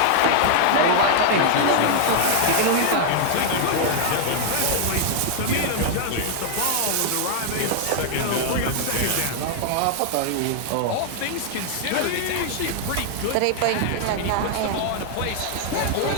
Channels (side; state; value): both; different; correlation 0.00